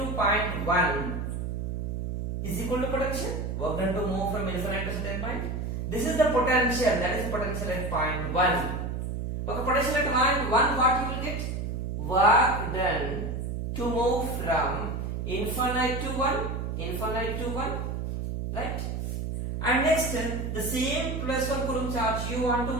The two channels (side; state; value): right; noise; hum, 3 dB below the sound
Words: point 1 is equal to potential. Work done to move from infinite to certain point. This is the potential, that is potential at point 1. Okay, potential at point 1, what you will get? Work done to move from infinite to 1, right? And next, the same plus 1 coulomb charge you want to